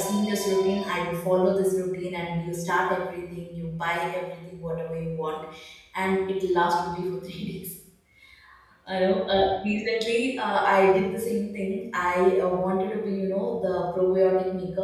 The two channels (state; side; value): identical; both; correlation 1.00